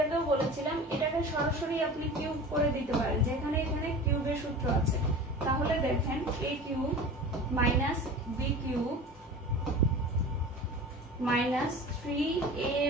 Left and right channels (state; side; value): normal; both; correlation 0.35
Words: আগেও বলেছিলাম, এটাকে সরাসরি আপনি কিউব করে দিতে পারেন, যেখানে এখানে কিউবের সূত্র আছে। তাহলে দেখেন a³ - b³ -